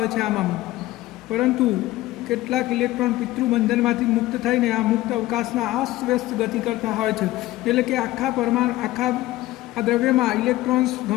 છે આમાં. પરંતુ કેટલાક ઇલેક્ટ્રોન પિતૃબંધનમાંથી મુક્ત થઈને આ મુક્ત અવકાશમાં અસ્તવ્યસ્ત ગતિ કરતા હોય છે. એટલે કે આખા આ દ્રવ્યમાં ઇલેક્ટ્રોન્સ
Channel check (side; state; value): right; quieter; 16.8 dB